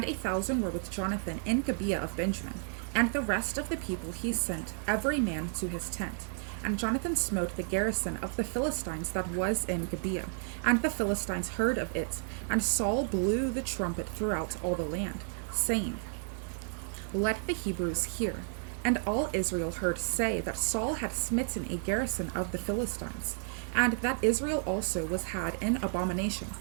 1,000 were with Jonathan in Gibeah of Benjamin. And the rest of the people he sent, every man to his tent. And Jonathan smote the garrison of the Philistines that was in Gibeah, and the Philistines heard of it. And Saul blew the trumpet throughout all the land, saying, Let the Hebrews hear. And all Israel heard say that Saul had smitten a garrison of the Philistines, and that Israel also was had in abomination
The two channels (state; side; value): silent; left; 56 dB below the other